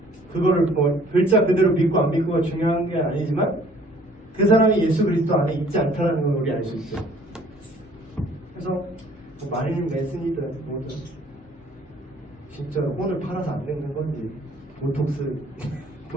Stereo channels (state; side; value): normal; both; correlation 0.57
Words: 그거를 뭐 글자 그대로 믿고 안 믿고가 중요한 게 아니지만 그 사람이 예수 그리스도 안에 있지 않다는 걸 우리 알 수 있죠. 그래서 뭐 마릴린 맨슨이든 뭐든 진짜 혼을 팔아서 안 늙는 건지